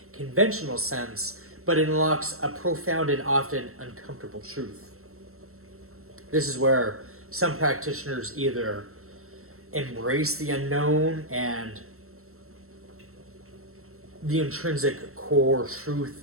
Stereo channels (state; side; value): late; left; 0.63 ms